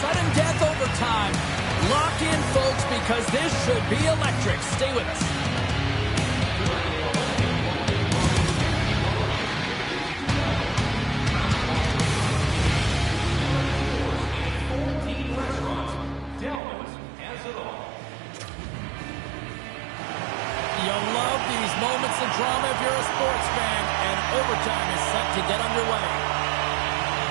death overtime. Lock in, folks, because this should be electric. Stay with us. You love these moments of drama if you're a sports fan, and overtime is set to get underway.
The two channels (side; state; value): left; drops out; at 16.6 s